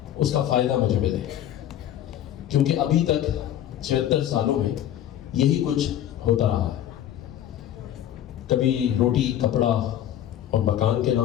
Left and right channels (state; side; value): quieter; right; 11.4 dB